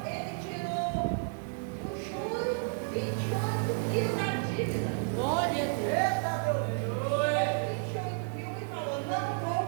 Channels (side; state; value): left; silent; 57 dB below the other